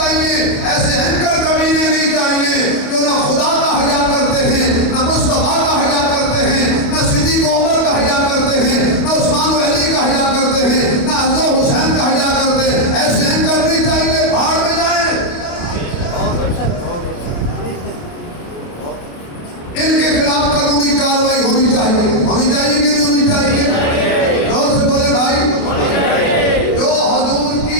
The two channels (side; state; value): right; late; 28 ms